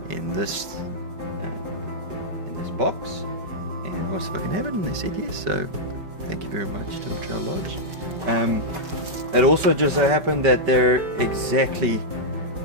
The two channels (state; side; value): late; left; 5.2 ms